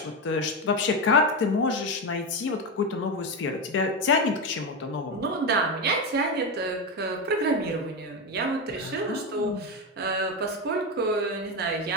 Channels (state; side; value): normal; both; correlation 0.13